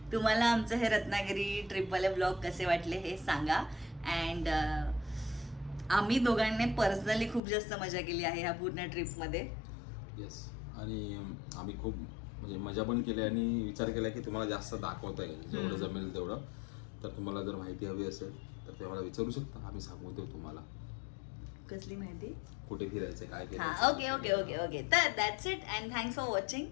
तुम्हाला आमचं हे रत्नागिरी ट्रिपवाले ब्लॉग कसे वाटले हे सांगा. अँड आम्ही दोघांनी पर्सनली खूप जास्त मजा केली आहे ह्या पूर्ण ट्रिपमध्ये. येस. आणि आम्ही खूप म्हणजे मजा पण केली आणि विचार केला की तुम्हाला जास्त दाखवता येईल जेवढं जमेल तेवढं. तर तुम्हाला जर माहिती हवी असेल तर ते मला विचारू शकता, आम्ही सांगू देऊ तुम्हाला. कसली माहिती? कुठे फिरायचं, काय केलं. Okay okay okay okay. तर that's it and thanks for watching.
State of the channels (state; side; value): drops out; right; at 7.4 s